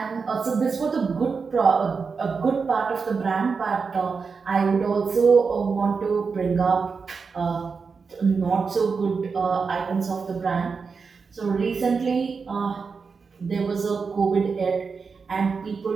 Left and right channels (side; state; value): left; quieter; 5.1 dB